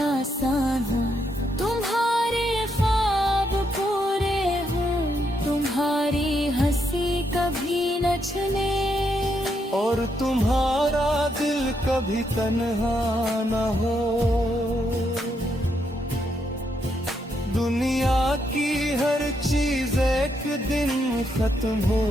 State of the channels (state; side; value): normal; both; correlation 0.78